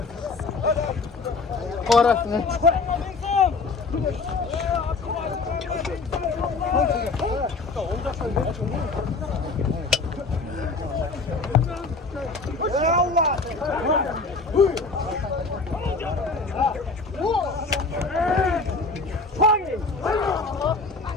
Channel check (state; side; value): quieter; right; 3.9 dB